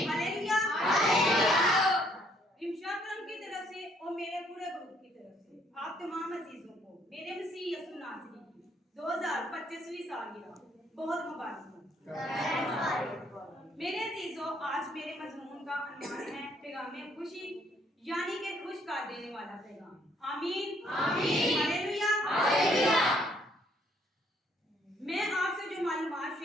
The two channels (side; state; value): both; normal; correlation 0.67